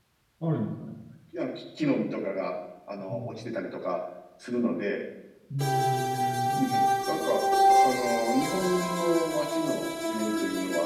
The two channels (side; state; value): both; identical; correlation 1.00